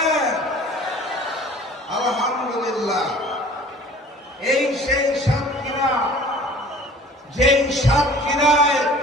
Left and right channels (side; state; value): both; normal; correlation 0.48